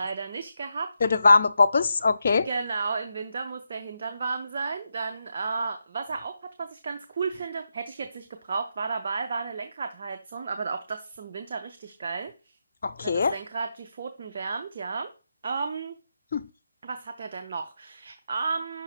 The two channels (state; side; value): inverted; both; correlation -0.85